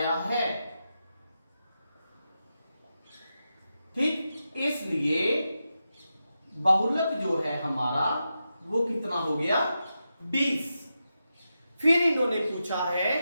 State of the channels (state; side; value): inverted; both; correlation -0.89